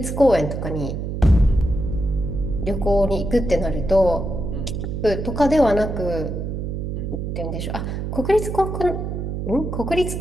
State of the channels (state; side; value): noise; right; hum, 4 dB below the sound